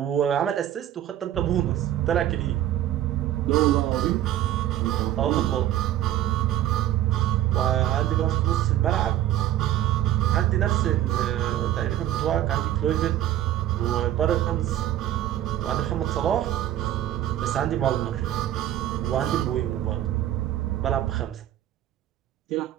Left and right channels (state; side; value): quieter; left; 12.6 dB